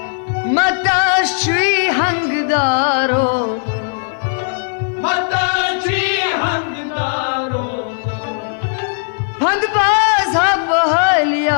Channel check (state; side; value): silent; right; 68 dB below the other